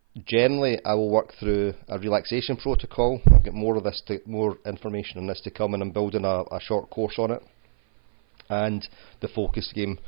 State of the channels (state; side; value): silent; left; 56 dB below the other